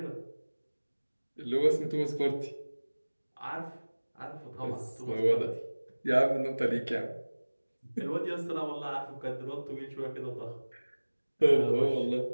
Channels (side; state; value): both; inverted; correlation -1.00